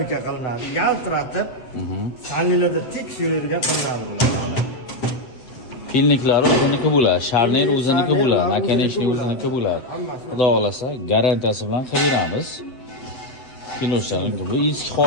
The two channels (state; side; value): late; right; 8.0 ms